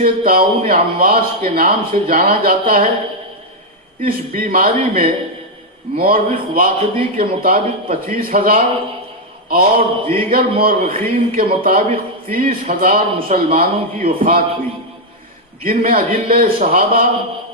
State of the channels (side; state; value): both; normal; correlation 0.00